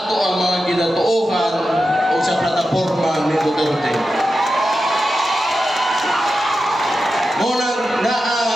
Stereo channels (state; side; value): normal; both; correlation 0.90